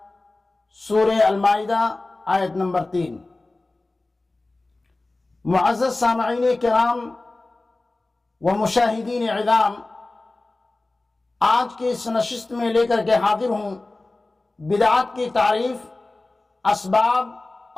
سورہ المائدہ آیت نمبر 3۔ معزز سامعین کرام و مشاہدین عظام، آج کی اس نشست میں لے کر کے حاضر ہوں بدعات کی تعریف، اسباب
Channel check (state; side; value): quieter; right; 3.0 dB